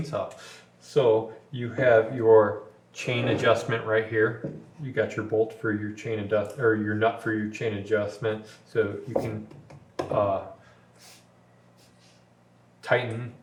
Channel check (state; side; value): identical; both; correlation 1.00